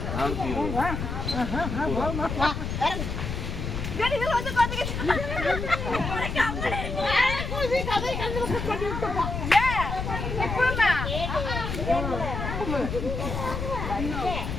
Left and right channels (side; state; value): left; noise; rumble, 4 dB below the sound